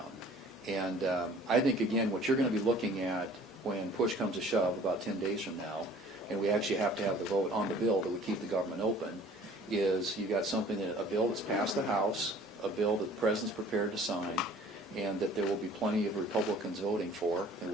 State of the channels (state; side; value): normal; both; correlation 0.51